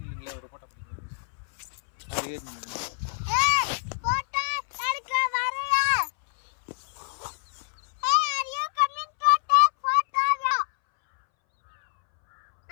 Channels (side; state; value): right; silent; 61 dB below the other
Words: நில்லுங்களா, ஒரு போட்டோ பிடிக்கிறேன். அது ஏறி நில்லுங்களா.